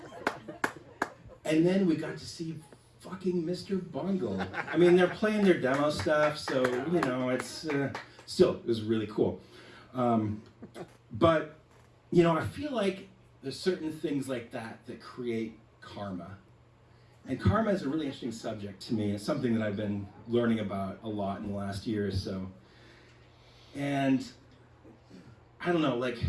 And then we got to see fucking Mr. Bungle. I mean, they're playing their demo stuff, so, it's still, it was really cool. But, I feel like there's certain things like that create karma. And karma is a really interesting subject to me. It's something that I've been learning about a lot in the last year or so. And I don't know,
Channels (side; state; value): both; identical; correlation 1.00